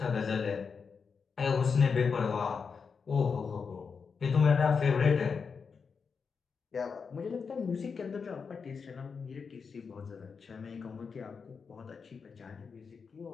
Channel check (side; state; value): right; quieter; 5.6 dB